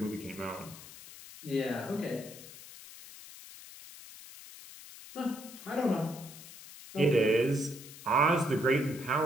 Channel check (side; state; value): left; noise; hiss, 16 dB below the sound